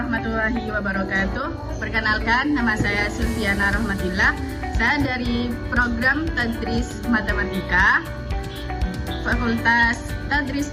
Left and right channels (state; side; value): identical; both; correlation 1.00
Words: warahmatullahi wabarakatuh. Perkenalkan, nama saya Sulfiana Rahmatillah. Saya dari program Tadris Matematika Fakultas Tadris